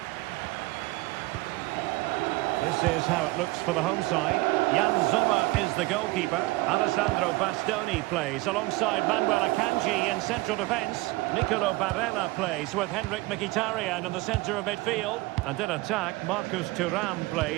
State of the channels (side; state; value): left; quieter; 21.4 dB